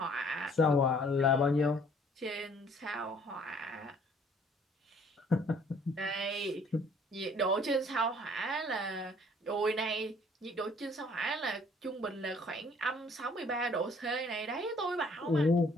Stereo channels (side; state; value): both; normal; correlation 0.59